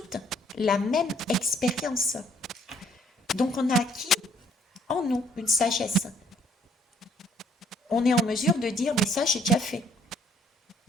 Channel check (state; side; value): normal; both; correlation 0.65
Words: la même expérience. Donc on a acquis en nous une sagesse. On est en mesure de dire, mais ça j'ai déjà fait.